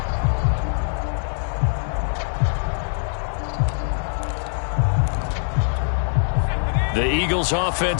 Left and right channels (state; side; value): silent; right; 56 dB below the other